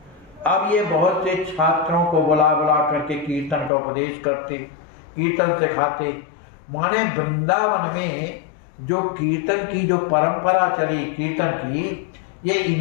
अब ये बहुत से छात्रों को बुला करके कीर्तन का उपदेश करते, कीर्तन सिखाते। माने वृंदावन में जो कीर्तन की जो परंपरा चली कीर्तन की, ये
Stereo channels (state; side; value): drops out; right; at 3.7 s